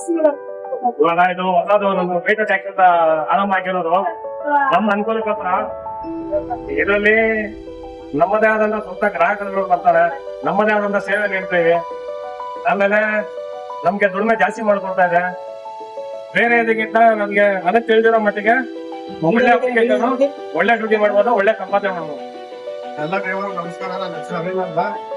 ಇವಾಗ ಇದು ಹೊಸದು ನಮ್ಮ ಮೀಟರ್ ಟ್ಯಾಕ್ಸ್ ಅಂತ ಆರಂಭ ಆಗಿರೋದು ನಮ್ಮ ಅನುಕೂಲಕ್ಕೋಸ್ಕರ. ಇದರಲ್ಲಿ ನಮ್ಮದೇ ಆದಂತ ಸ್ವಂತ ಗ್ರಾಹಕರುಗಳು ಬರ್ತಾರೆ, ನಮ್ಮದೇ ಆದಂತ ಸೇವೆ ನೀಡ್ತೇವೆ. ಆಮೇಲೆ ನಮ್ಗೆ ದುಡಿಮೆ ಜಾಸ್ತಿ ಮಾಡ್ಕೊಡ್ತಾ ಇದೆ. ಬೇರೆ ಇದಕ್ಕಿಂತ ನಮ್ಗೆ ಅದಕ್ಕೆ ತಿಳಿದಿರೋ ಮಟ್ಟಿಗೆ ಒಳ್ಳೆ ಅಪ್ಲಿಕೇಶನ್, ಒಳ್ಳೆ ಡ್ಯೂಟಿ ಮಾಡ್ಬೋದು, ಒಳ್ಳೆ ಸಂಪಾದನೆ ಮಾಡ್ಬೋದು. ಎಲ್ಲ ಡ್ರೈವರ್ ನಮಸ್ಕಾರ. ನನ್ನ ಹೆಸರು ಅನಿಲ್ ಅಂತ.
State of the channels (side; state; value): both; identical; correlation 1.00